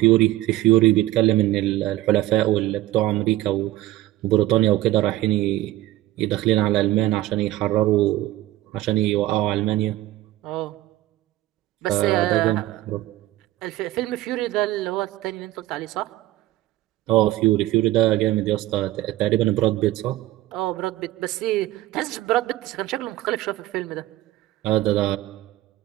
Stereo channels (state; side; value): quieter; left; 15.9 dB